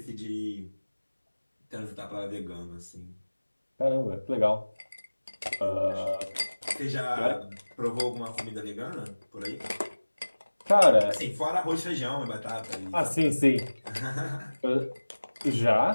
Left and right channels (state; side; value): inverted; both; correlation -1.00